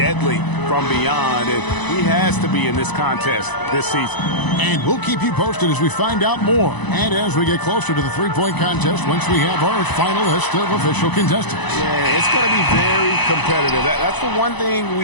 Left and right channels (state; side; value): late; right; 1.0 ms